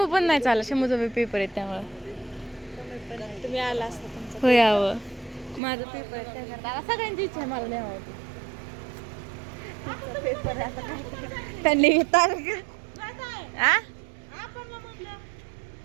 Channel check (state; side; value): drops out; left; at 5.6 s